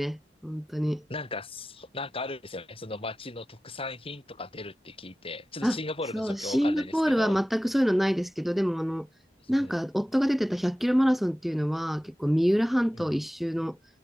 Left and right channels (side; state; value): both; normal; correlation 0.95